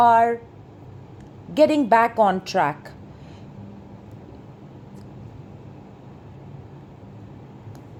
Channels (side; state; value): both; identical; correlation 1.00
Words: getting back on track.